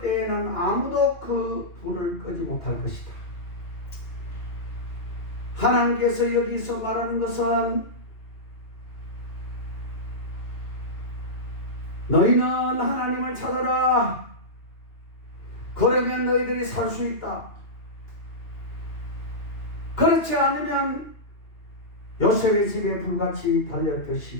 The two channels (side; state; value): right; late; 2.8 ms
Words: 아무도 그 불을 끄지 못할 것이다. 하나님께서 여기서 말하는 것은 너희는 하나님을 찾아라. 그러면 너희들이 살 수 있다. 그렇지 않으면 요셉의 집에 불같이 달려